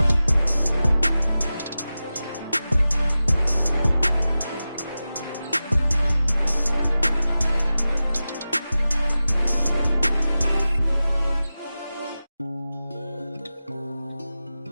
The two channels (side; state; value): both; inverted; correlation -0.94